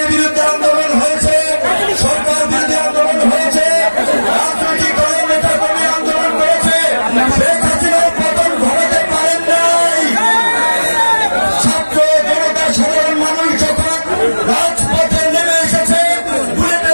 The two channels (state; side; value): inverted; both; correlation -1.00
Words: বিরুদ্ধে আন্দোলন হয়েছে, সরকার বিরোধী আন্দোলন হয়েছে, রাজনৈতিক দলের নেতা কর্মী আন্দোলন করেছে। শেখ হাসিনার পতন ঘটাতে পারেন নাই। ছাত্র জনতা সাধারণ মানুষ যখন রাজপথে নেমে এসেছে